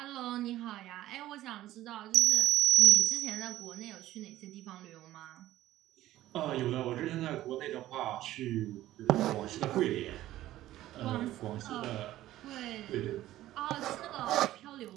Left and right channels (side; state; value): left; quieter; 14.6 dB